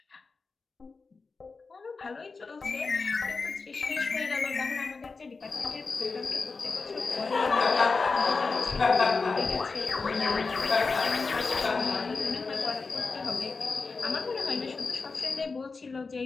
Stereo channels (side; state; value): right; quieter; 4.3 dB